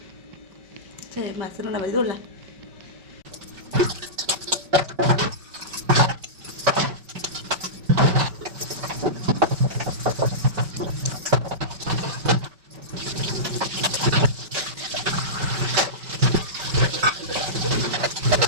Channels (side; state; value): left; late; 5.2 ms